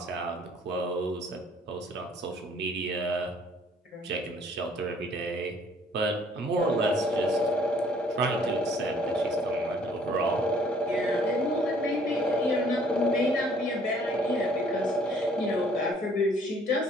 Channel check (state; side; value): normal; both; correlation 0.59